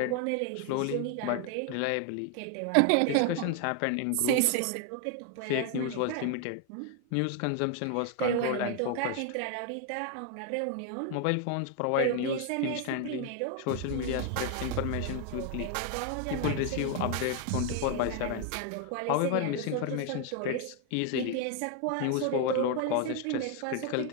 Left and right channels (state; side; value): different; both; correlation 0.01